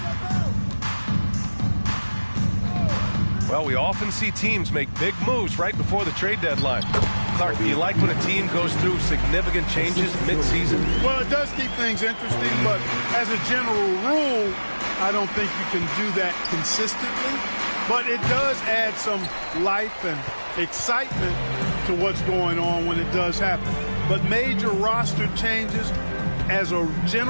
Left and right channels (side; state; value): both; inverted; correlation -1.00